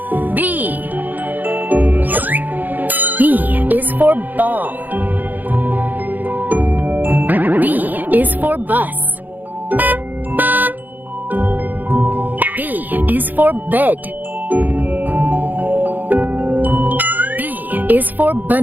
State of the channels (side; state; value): left; late; 0.085 ms